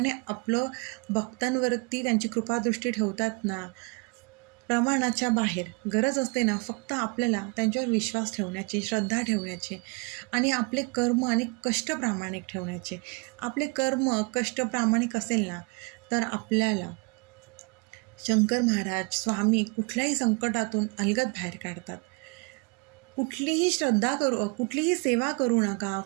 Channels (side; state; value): left; quieter; 30.9 dB